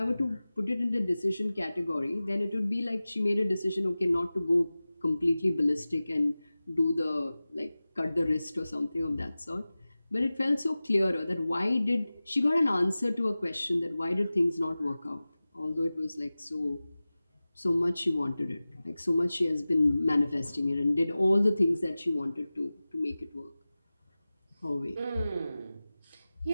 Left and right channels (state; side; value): inverted; both; correlation -0.97